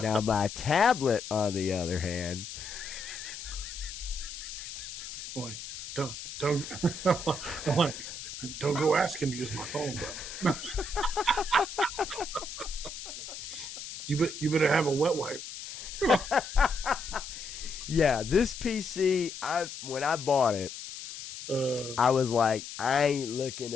my tablet, on the other hand... Boy, don't go asking to use my phone, bro. You better have a wet wipe. Yeah, this PC, when I bought it, I was like, I ain't looking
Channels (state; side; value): noise; left; hiss, 10 dB below the sound